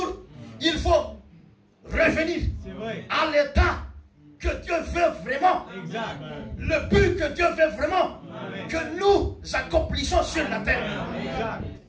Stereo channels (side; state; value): both; identical; correlation 1.00